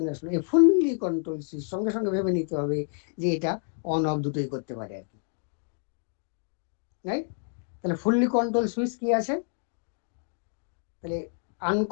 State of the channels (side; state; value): right; silent; 59 dB below the other